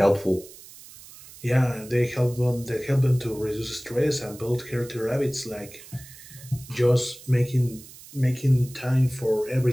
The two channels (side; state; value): right; noise; hiss, 19 dB below the sound